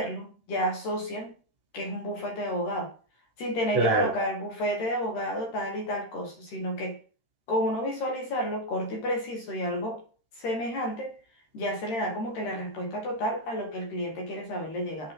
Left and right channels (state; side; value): late; right; 13 ms